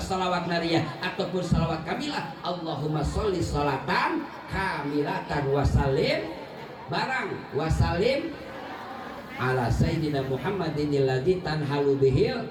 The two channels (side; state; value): both; identical; correlation 1.00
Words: nariyah ataupun sholawat kamilah Allahumma sholli sholatan kamilatan wa salim barang wa salim ala sayyidina Muhammadin alladzi tanhalu bihil